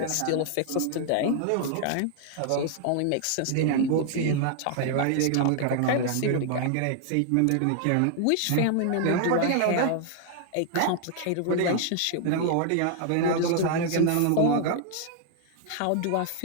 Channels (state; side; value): different; both; correlation 0.00